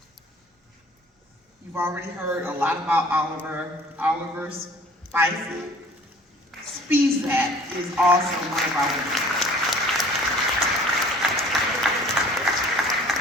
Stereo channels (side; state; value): both; normal; correlation 0.50